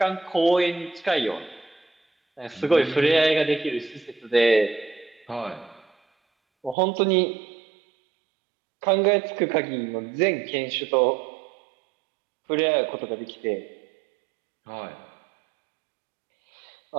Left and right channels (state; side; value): drops out; left; at 6.8 s